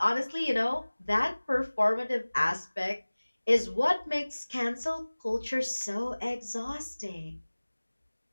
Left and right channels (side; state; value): both; inverted; correlation -1.00